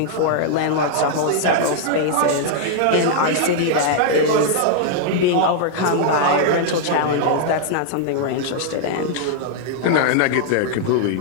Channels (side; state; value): both; different; correlation 0.00